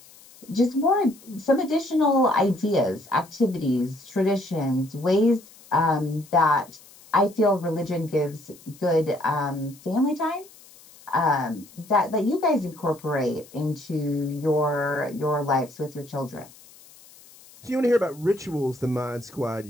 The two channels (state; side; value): noise; left; hiss, 23 dB below the sound